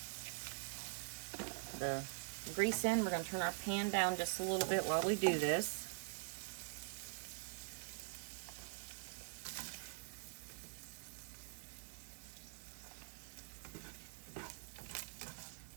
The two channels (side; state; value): left; silent; digital silence